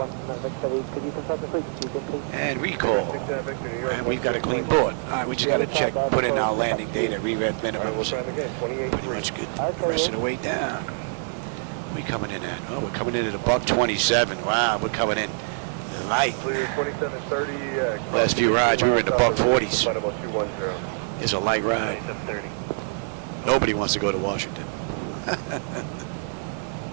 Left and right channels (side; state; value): left; silent; 62 dB below the other